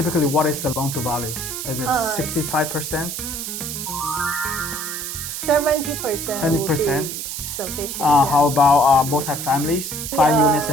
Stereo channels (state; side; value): noise; right; hiss, 6 dB below the sound